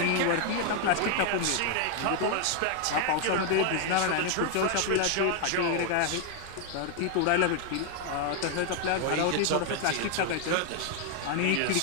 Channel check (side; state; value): both; different; correlation 0.00